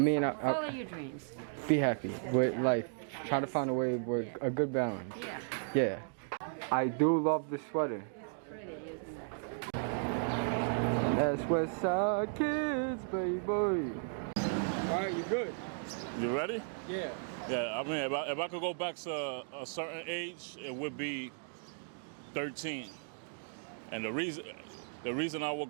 Follow your dreams. be happy with life. Try to find a way with a good balance. Yeah. Yeah. I do love the sweater. Pretty, isn't it? That's Westside Kids, baby. Alright, you good? You ready? Yeah. Yeah, I mean, if I could go back to a certain age, it would be 13. And the reason I would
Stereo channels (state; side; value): silent; left; digital silence